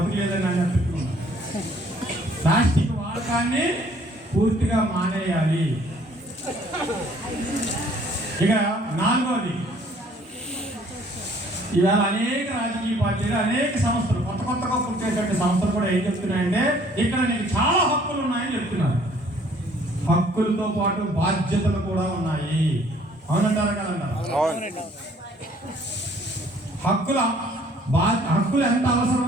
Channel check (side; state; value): both; normal; correlation 0.59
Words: అని చెప్తున్నాం. ప్లాస్టిక్ వాడకాన్ని పూర్తిగా మానేయాలి. ఇక నాలుగోది, ఇవాళ అనేక రాజకీయ పార్టీలు, అనేక సంస్థలు, కొత్తగా పుట్టేటువంటి సంస్థలు కూడా ఏం చెప్తున్నాయంటే ఇక్కడ నీకు చాలా హక్కులు ఉన్నాయని చెప్తున్నారు. హక్కులతో పాటు బాధ్యతలు కూడా ఉన్నాయి. అవునంటారా కదంటారా? హక్కులు ఎంత